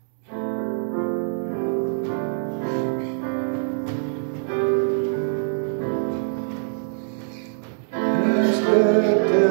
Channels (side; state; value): left; silent; 63 dB below the other